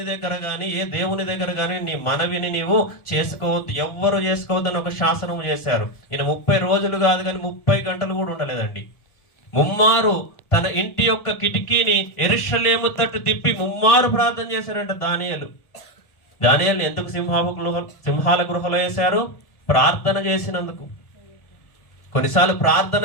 దగ్గర గాని ఏ దేవుని దగ్గర గాని నీ మనవిని నీవు చేసుకోవద్దు, ఎవ్వరు చేసుకోవద్దు అని ఒక శాసనము చేశారు. ఈయన 30 రోజులు కాదు కానీ 30 గంటలు కూడా ఉండలేదండి. ముమ్మారు తన ఇంటి యొక్క కిటికీని యెరూషలేము తట్టు తిప్పి ముమ్మారు ప్రార్థన చేశారంట దానియేలు. దానియేలుని ఎందుకు సింహాల గృహలో వేశారు? ప్రార్థన చేసినందుకు. కొన్నిసార్లు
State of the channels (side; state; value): right; late; 1.5 ms